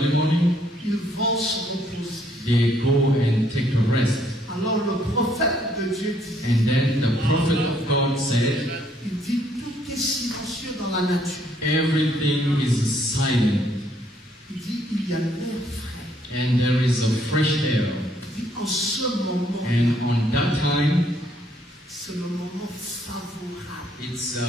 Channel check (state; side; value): normal; both; correlation 0.68